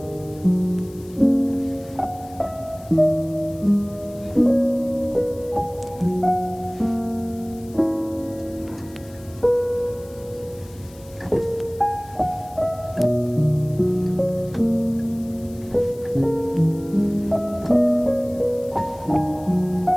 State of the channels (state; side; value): noise; left; hiss, 24 dB below the sound